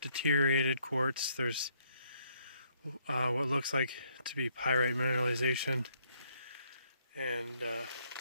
deteriorated quartz. There's what looks like to be pyrite mineralization, and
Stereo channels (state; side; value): inverted; both; correlation -0.70